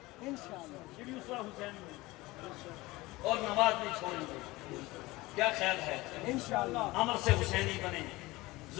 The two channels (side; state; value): right; quieter; 20.6 dB